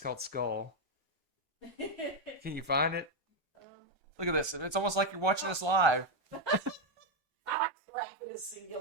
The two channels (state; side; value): late; left; 1.3 ms